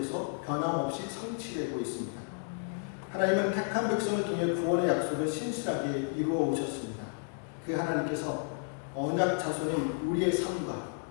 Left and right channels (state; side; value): silent; right; 56 dB below the other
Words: 변함없이 성취되고 있습니다. 하나님은 택한 백성을 통해 구원의 약속을 신실하게 이루어 오셨습니다. 그 하나님께서 언약 자손인 우리의 삶과